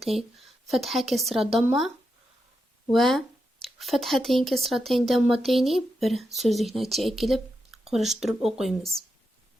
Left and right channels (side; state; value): both; normal; correlation 0.86